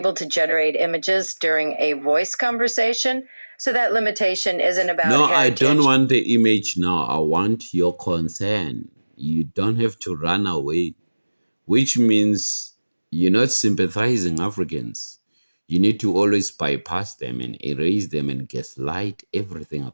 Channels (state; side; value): inverted; both; correlation -1.00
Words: to generate images during a voice conversation, so that limitation isn't about No, I don't heritage. want the image now. I want your concern. You don't have to run away, which means you're not sympathizing Africans. You need to always bypass them and erase them and gaslight everything